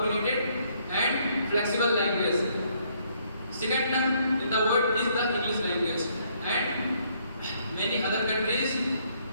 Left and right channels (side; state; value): both; inverted; correlation -0.69